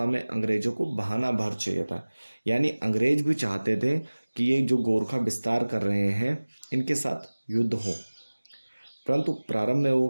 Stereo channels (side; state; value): both; inverted; correlation -1.00